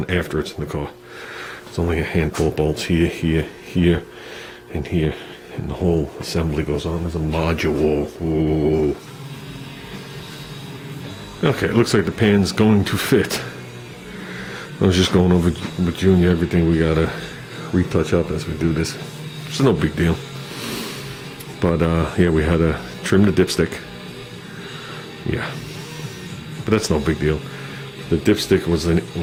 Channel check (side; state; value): both; identical; correlation 1.00